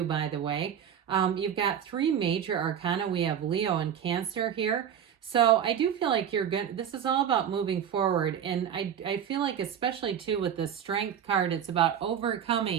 by the way. You've got three major arcana. We have Leo and Cancer here. So I do feel like you're good. This is all about moving forward. And I feel like especially too with the Strength card, it's about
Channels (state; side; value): quieter; left; 8.9 dB